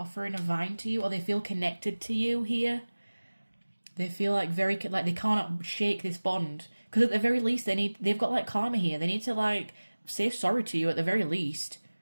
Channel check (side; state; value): both; inverted; correlation -1.00